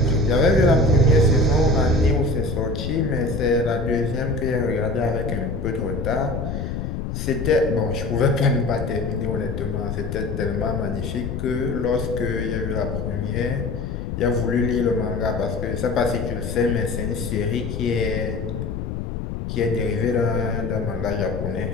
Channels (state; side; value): noise; left; rumble, 5 dB below the sound